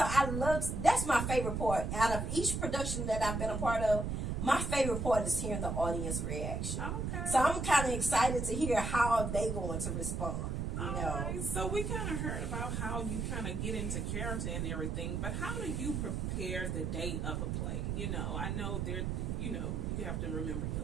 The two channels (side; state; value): right; noise; rumble, 1 dB below the sound